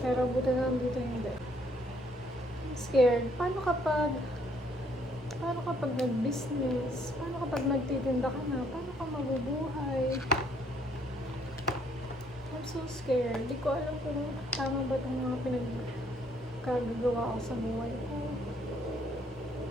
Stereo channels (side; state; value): both; normal; correlation 0.66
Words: buti na lang dito hindi. I'm scared. Paano kapag nag-business? Paano kapag nagtitinda ka na? Paano ka mabubuhay? I'm so scared. Di ko alam kung tama ba itong mga pinagkagagawa ko sa buhay ko.